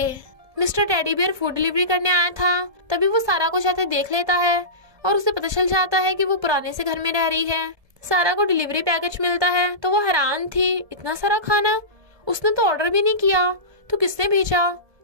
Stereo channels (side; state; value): left; late; 1.7 ms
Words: Mister teddy bear food delivery करने आया था, तभी वो सारा को जाते देख लेता है और उसे पता चल जाता है कि वो पुराने से घर में रह रही है। सारा को डिलीवरी पैकेज मिलता है तो वो हैरान थी, इतना सारा खाना उसने तो ऑर्डर भी नहीं किया, तो किसने भेजा?